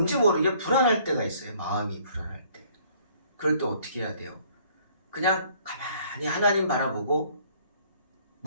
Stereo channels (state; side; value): inverted; both; correlation -0.59